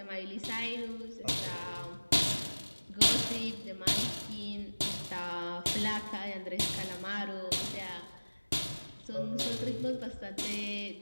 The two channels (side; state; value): both; inverted; correlation -1.00